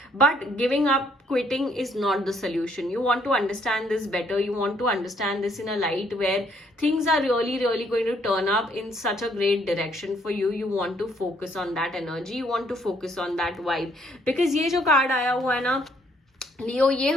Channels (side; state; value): both; normal; correlation 0.68